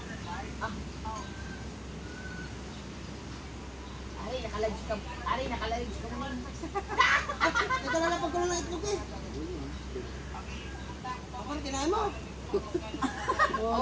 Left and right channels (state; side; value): identical; both; correlation 1.00